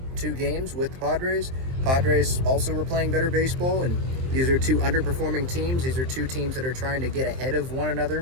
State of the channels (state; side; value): late; left; 23 ms